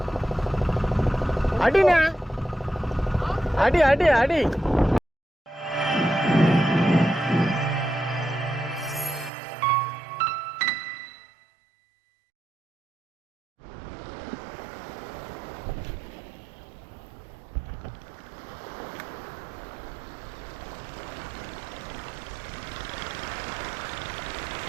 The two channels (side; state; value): left; drops out; at 9.3 s